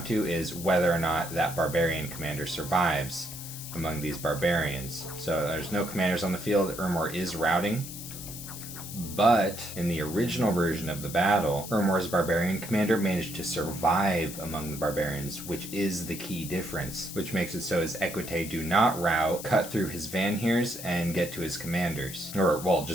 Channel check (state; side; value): noise; left; hiss, 10 dB below the sound